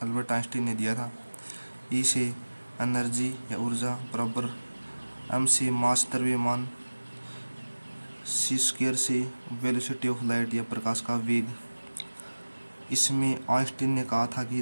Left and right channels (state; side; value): inverted; both; correlation -1.00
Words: अल्बर्ट आइंस्टीन ने दिया था। E से एनर्जी या ऊर्जा बराबर m से मास द्रव्यमान, c² से वेलोसिटी ऑफ लाइट या प्रकाश का वेग। इसमें आइंस्टीन ने कहा था कि